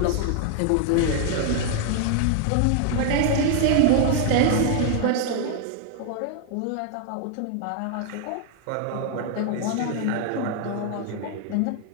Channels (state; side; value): different; both; correlation 0.00